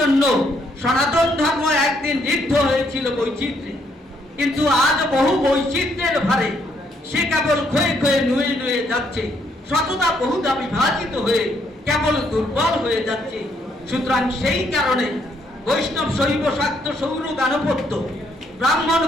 সনাতন ধর্ম একদিন ঋদ্ধ হয়েছিল বৈচিত্র্যে, কিন্তু আজ বহু বৈচিত্র্যের ভারে সে কেবল ক্ষয়ে ক্ষয়ে নুয়ে নুয়ে যাচ্ছে, শতদা বহুদা বিভাজিত হয়ে কেবল দুর্বল হয়ে যাচ্ছে। সুতরাং সেই কারণে বৈষ্ণব শৈব শাক্ত সৌর গানপত্য, ব্রাহ্মণ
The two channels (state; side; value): normal; both; correlation 0.71